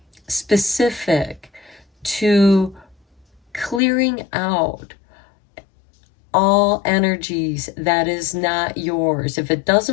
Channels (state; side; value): drops out; right; at 3.8 s